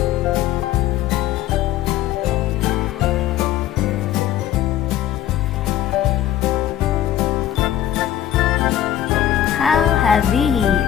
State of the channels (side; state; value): right; quieter; 11.7 dB